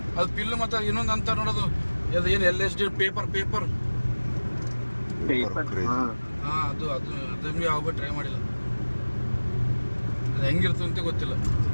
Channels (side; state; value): both; inverted; correlation -1.00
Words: ಅದು ಪಿಲ್ ಮತ್ತೆ ಇನ್ನೊಂದು ಅಂತ ನೋಡೋದು, ಅದು ಏನು LSD ಪೇಪರ್ ಅದು ಯಾವ ಟ್ರೈ ಮಾಡಿಲ್ಲ. ಅದು ಹೆಂಗಿರ್ತದೆ ಅಂತ ಗೊತ್ತಿಲ್ಲ.